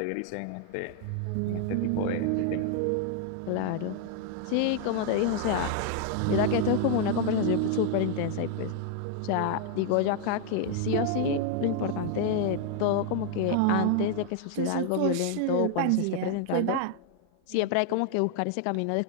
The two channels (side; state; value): both; different; correlation 0.00